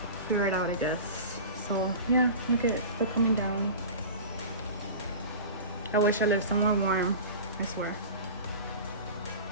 Figure it out, I guess. So yeah, look at it. They're coming down. I wish I lived somewhere warm. I swear.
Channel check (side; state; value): both; inverted; correlation -0.34